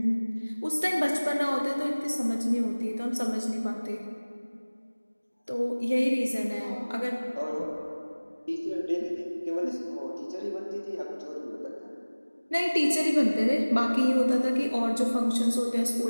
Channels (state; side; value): inverted; both; correlation -1.00